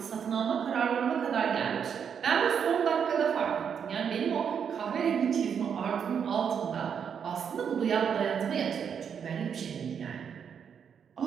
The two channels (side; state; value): left; quieter; 7.4 dB